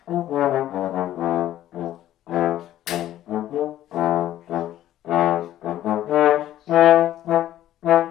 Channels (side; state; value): right; quieter; 13.0 dB